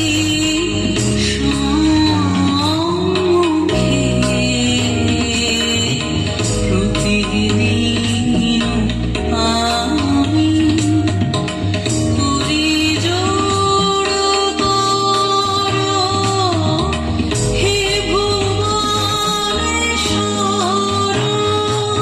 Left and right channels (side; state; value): both; identical; correlation 1.00